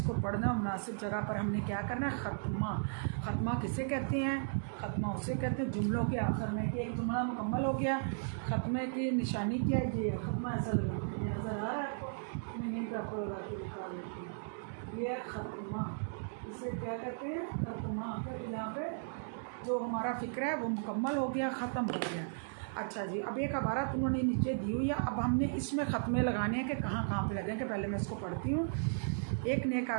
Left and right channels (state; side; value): silent; left; digital silence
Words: पढ़ना मुनासिब जगह पर हमने क्या करना है, ख़त्मा। ख़त्मा किसे कहते हैं, ख़त्मा उसे कहते हैं जुमलों के आखिर में कि एक जुमला मुकम्मल हो गया, ख़त्मे की निशानी क्या है, ये ख़त्मा ऐसा लगा, ये नज़र आ रहा है आपको, मैं यहीं पर आपको लगा के दिखा देती हूँ, ये ख़त्मा, इसे क्या कहते हैं, ख़त्मा। फिर यहाँ पे जो हमारा फ़िक्र है वो मुकम्मल हो गया, ख़त्म हो गया। अच्छा जी, अब एक इबारत उन्होंने नीचे दी हुई है, अब हमने इसमें ख़त्मे लगाने हैं कि कहाँ कहाँ पे लगेंगे। पहले मैं इसको पढ़ती हूँ। एक नेक